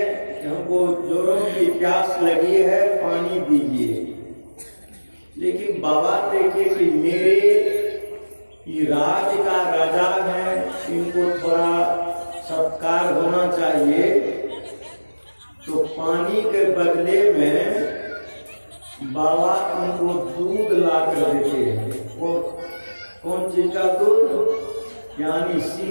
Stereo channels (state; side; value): inverted; both; correlation -1.00